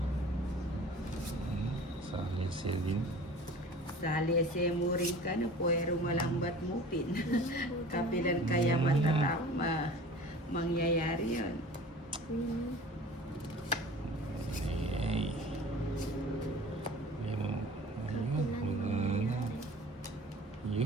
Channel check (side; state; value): both; normal; correlation 0.42